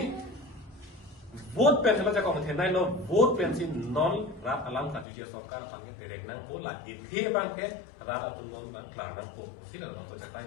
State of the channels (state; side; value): drops out; right; at 5.1 s